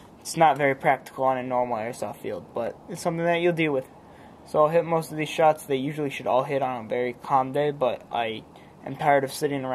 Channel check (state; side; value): identical; both; correlation 1.00